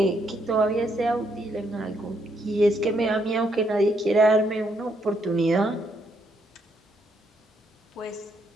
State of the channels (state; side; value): normal; both; correlation 0.74